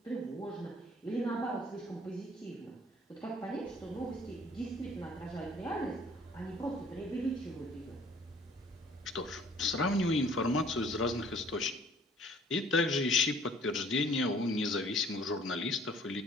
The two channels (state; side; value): normal; both; correlation 0.55